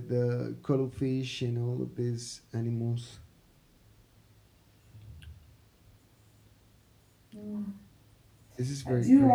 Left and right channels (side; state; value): both; identical; correlation 1.00